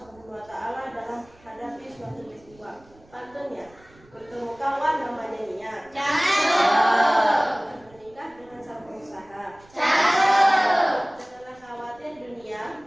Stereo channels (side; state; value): right; noise; rumble, 28 dB below the sound